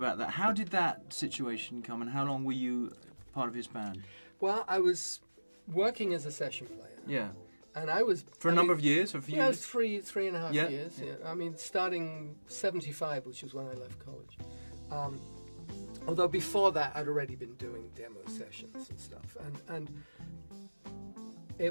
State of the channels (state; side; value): inverted; both; correlation -1.00